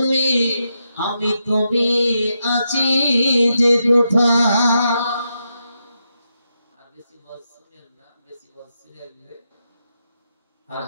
আমি তুমি আছি যে কোথায়। আর বেশি বল শুনেন না, বেশি বল শুনে নিলে আর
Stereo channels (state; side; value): inverted; both; correlation -0.84